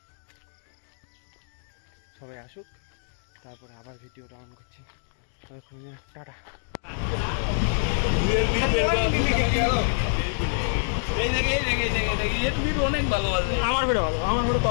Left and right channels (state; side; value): silent; right; digital silence